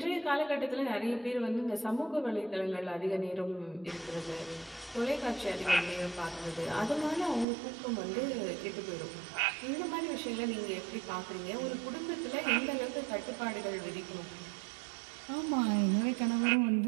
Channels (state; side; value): drops out; left; at 7.5 s